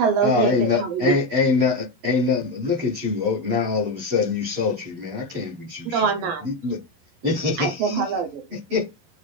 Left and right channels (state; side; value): late; left; 11 ms